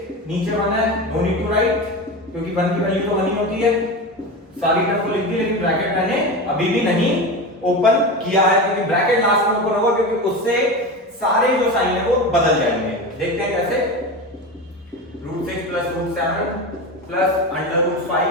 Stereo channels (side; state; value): both; normal; correlation 0.24